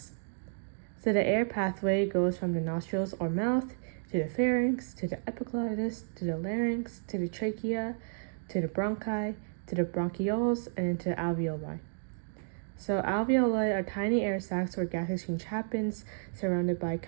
So the air pathway goes from the nostrils or mouth to the pharynx, to the epiglottis, to the larynx, to the trachea, to the bronchi, to the bronchioles, and to the alveoli. So alveoli are tiny air sacs where gas exchange happens, surrounded by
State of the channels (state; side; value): silent; left; digital silence